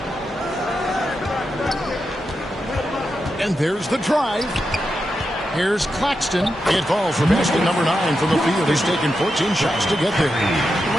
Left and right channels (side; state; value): both; normal; correlation 0.87